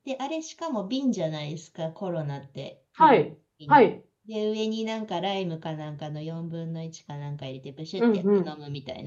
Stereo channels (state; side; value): identical; both; correlation 1.00